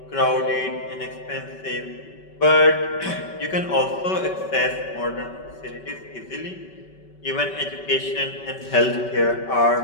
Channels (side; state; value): right; late; 5.2 ms